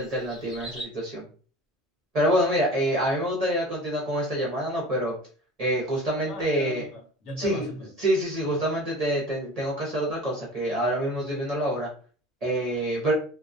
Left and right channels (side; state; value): both; normal; correlation 0.40